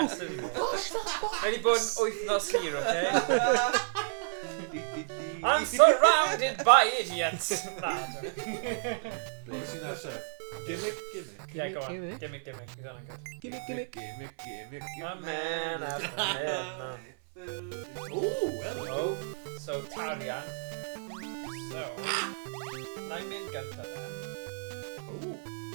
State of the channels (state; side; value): silent; left; 56 dB below the other